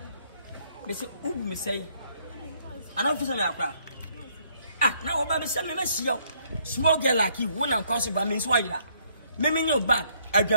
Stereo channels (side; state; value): both; inverted; correlation -0.68